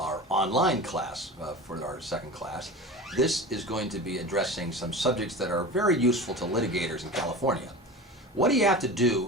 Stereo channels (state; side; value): normal; both; correlation 0.32